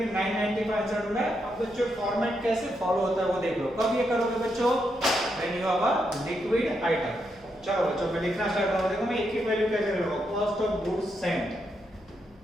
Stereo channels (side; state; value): left; noise; hum, 27 dB below the sound